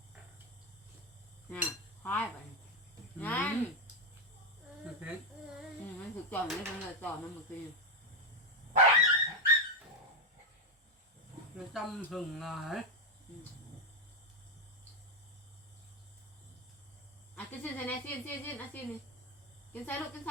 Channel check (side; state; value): both; normal; correlation 0.06